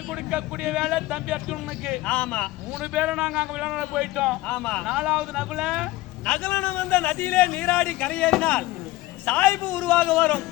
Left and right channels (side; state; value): right; quieter; 18.2 dB